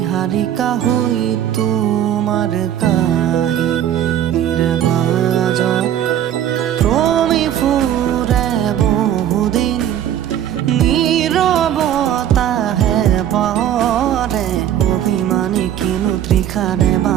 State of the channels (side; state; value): left; quieter; 10.6 dB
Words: হৈ তোমাৰ কাহিনীৰ মাজত ক্ৰমি ফুৰে বহুদিন নীৰৱতাহে পৰে অভিমানী কিনো তৃষাৰে